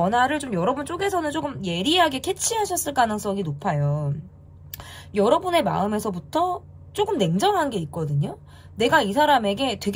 좀 여러분 쪽에서는 조금 예리하게 캐치하셨을 가능성이 높아요. 여러분의 마음에서부터 조금 냉정한 게 있거든요. 내가 이 사람에게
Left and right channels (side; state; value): both; identical; correlation 1.00